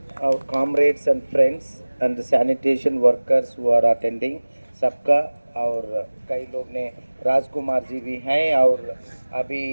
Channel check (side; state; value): both; inverted; correlation -1.00